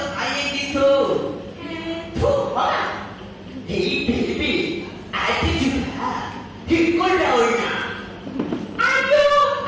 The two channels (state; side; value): identical; both; correlation 1.00